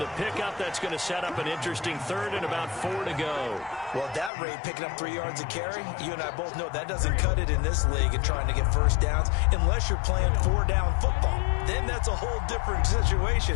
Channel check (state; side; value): drops out; right; at 4.3 s